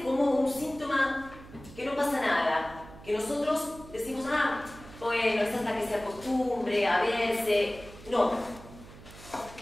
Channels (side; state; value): right; noise; hum, 18 dB below the sound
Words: como un síntoma que no pasa nada, que nosotros decimos, ah, bueno, es hasta que se acostumbre a verse. No.